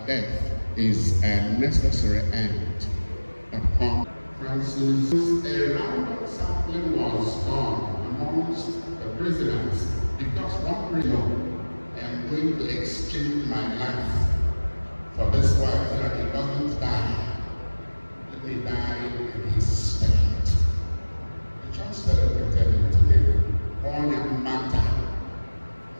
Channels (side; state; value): both; inverted; correlation -1.00